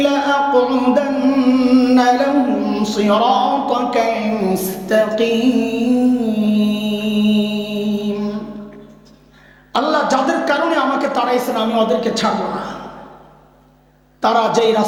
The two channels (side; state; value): both; identical; correlation 1.00